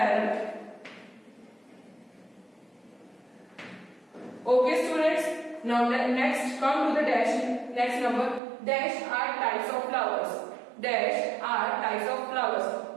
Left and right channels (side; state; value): left; drops out; at 8.4 s